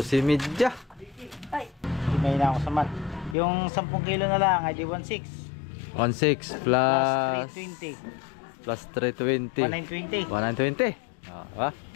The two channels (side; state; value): right; drops out; at 3.4 s